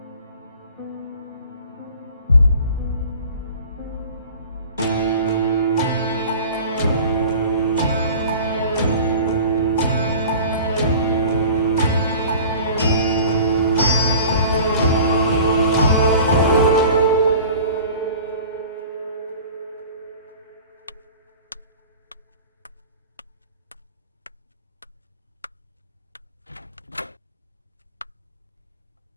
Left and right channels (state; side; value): inverted; both; correlation -0.42